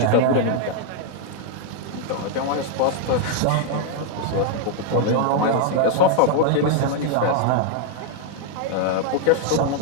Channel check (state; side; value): different; both; correlation 0.00